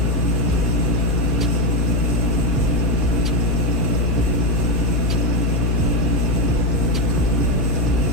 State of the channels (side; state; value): both; normal; correlation 0.08